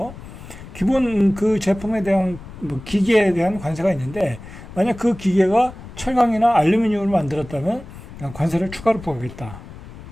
기본 그 제품에 대한 뭐 기계에 대한 관세가 있는데, 만약 그 기계가 철강이나 알루미늄으로 만들었다면 관세를 추가로 부과하겠다.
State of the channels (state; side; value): noise; left; rumble, 15 dB below the sound